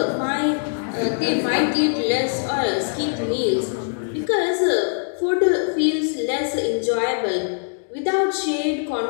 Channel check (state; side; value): silent; right; 64 dB below the other